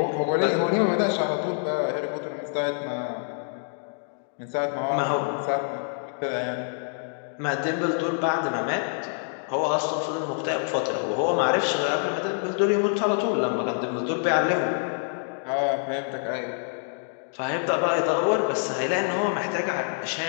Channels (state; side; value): silent; right; 60 dB below the other